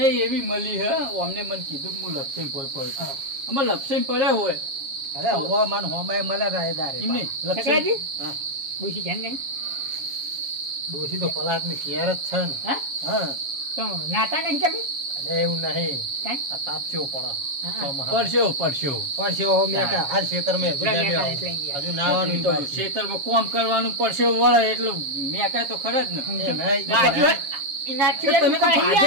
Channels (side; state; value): left; late; 7.4 ms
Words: એવી મળી હે અમને મને કીધું કે હું લપસીને ભોય પડે આમાં લપસીને પડ્યા હોય અરે હો મન હોમાય મળે રાયદારે એમ નહીં લપસીને શકરાજી હા. ડોશી છે ને ડોશી તો પલાટ ની કેર જ છે ને હા હા તો નાતા નહીં કે ભાઈ અલે એવું નહીં કાંઈ? આ તાપસ્યો પડે હા. ચોમાહા. પડશો પડશો પરસ્યો હો મેં કા હાલ ખેતર મેં પૂરા મેં કાંઈ એટલે યાર. હજુ નાવાનું તો બાકી. ખેતરમાં કોમ કરવાનું પડશો વળે એટલે મેં કાંઈ તો ખરા જ ને એ નહીં. બાજુ એનાથી તો તમે તો દુખાઈ